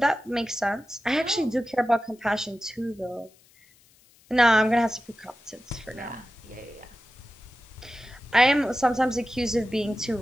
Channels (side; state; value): left; noise; hiss, 30 dB below the sound